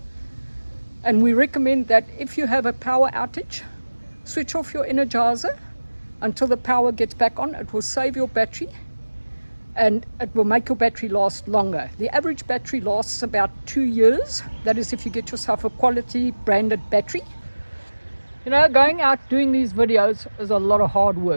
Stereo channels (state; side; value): inverted; both; correlation -1.00